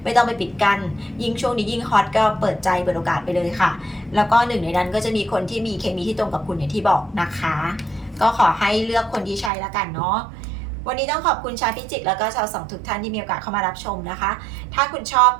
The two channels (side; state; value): left; drops out; at 9.5 s